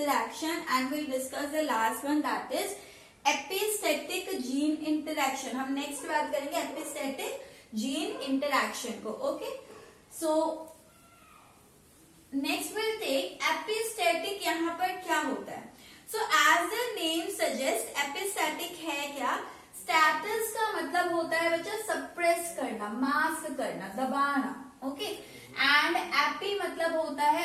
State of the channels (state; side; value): identical; both; correlation 1.00